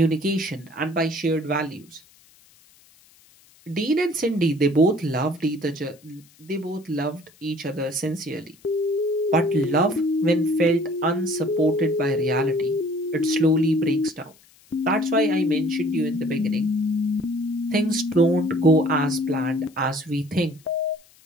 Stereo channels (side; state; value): left; noise; hiss, 29 dB below the sound